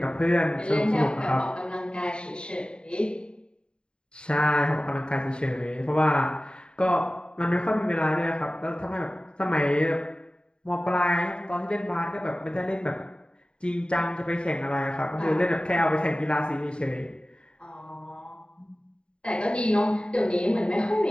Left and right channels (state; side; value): late; right; 0.051 ms